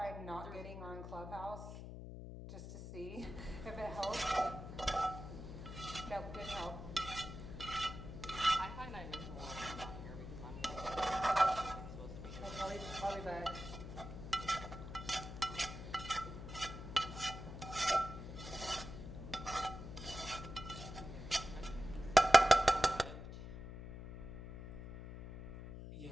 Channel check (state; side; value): noise; left; hum, 10 dB below the sound